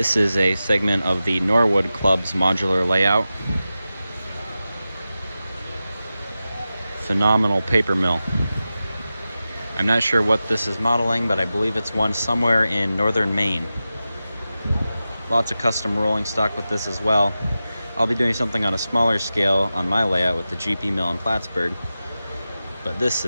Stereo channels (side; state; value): both; inverted; correlation -0.93